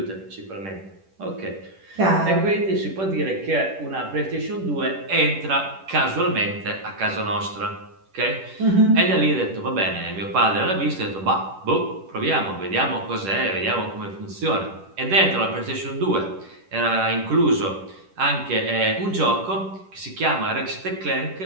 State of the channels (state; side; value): late; left; 10 ms